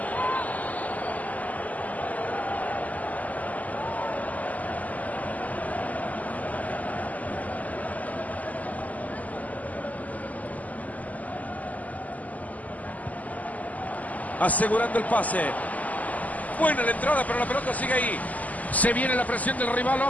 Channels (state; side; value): late; right; 0.077 ms